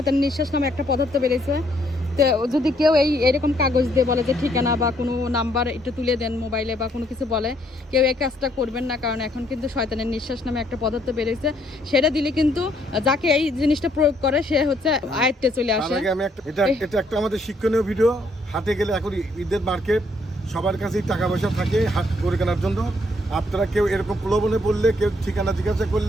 নিঃশ্বাস নামে একটা পদার্থ বেরিয়েছে, তো যদি কেউ এরকম কাগজ দিয়ে বলে যে ঠিকানা বা কোনো নাম্বার একটু তুলে দেন মোবাইলে বা কোনো কিছু বলে, কেউ এই কাজটা করবেন না। কারণ এখন কিন্তু শয়তানের নিঃশ্বাস নামে একটা পদার্থ বেরিয়েছে, সেটা দিলে কিন্তু যাকে এই জিনিসটা প্রয়োগ করে সে হচ্ছে আয়ত্তে চলে আসে। আমি এটা একটা আমাদের শিক্ষণীয় ভিডিও। হাটে গেলে এখন ঈদের মার্কেট, সবার কাছেই টাকা পয়সা থাকে হাট করে কেনার জন্য। আপনারা কেউ এরকম প্রলোভনে পড়লে, কেউ ঠিকানা জিজ্ঞাসা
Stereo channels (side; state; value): both; normal; correlation 0.69